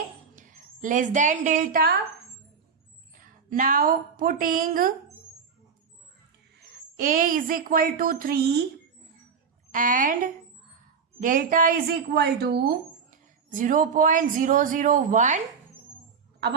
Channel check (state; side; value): quieter; left; 6.1 dB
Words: less than delta. Now putting a is equal to 3 and delta is equal to 0.001। अब